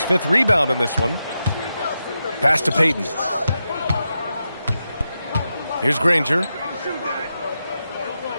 5th rebound in this one. Pass to Payton. Here's Granger.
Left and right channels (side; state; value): both; inverted; correlation -0.88